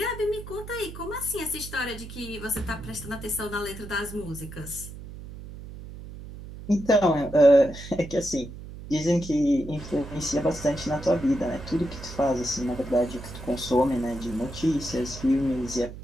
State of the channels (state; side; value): noise; right; hum, 12 dB below the sound